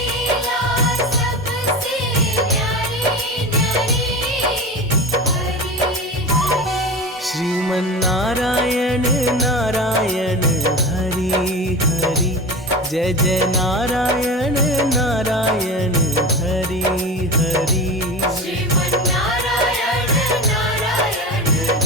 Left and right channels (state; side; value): normal; both; correlation 0.28